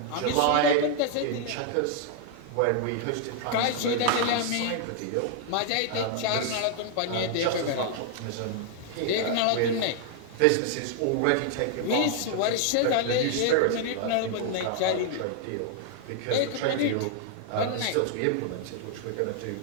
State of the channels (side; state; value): both; different; correlation 0.00